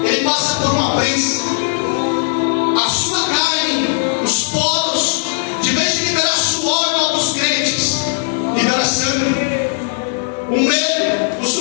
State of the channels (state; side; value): silent; right; 68 dB below the other